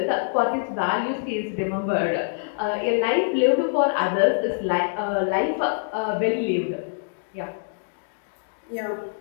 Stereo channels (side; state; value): right; silent; digital silence